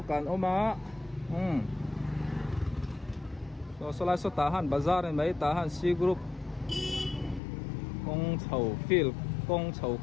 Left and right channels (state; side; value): drops out; right; at 7.4 s